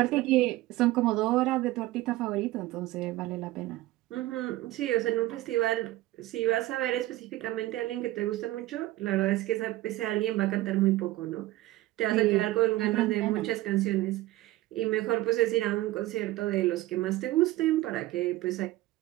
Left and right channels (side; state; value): left; quieter; 17.0 dB